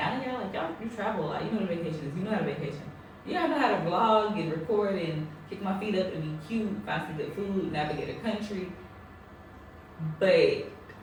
know y'all like, y'all, you travel a lot. You know what a vacation is. You know how to vacation. You gotta know how to vlog and record and kick my feet up and be cute, find some good food, navigate a country. But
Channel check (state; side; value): identical; both; correlation 1.00